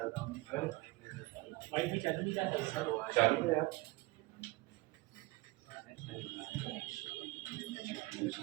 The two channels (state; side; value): quieter; left; 21.3 dB